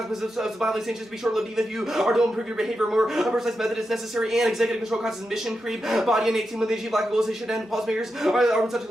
of violent sanctions to be short-lived even if you are to improve your behavior. More precise method is necessary and executive control causes mission creep. Body and 18 when they achieve lack of goals they should end. Policymakers are in such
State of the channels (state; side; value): normal; both; correlation 0.88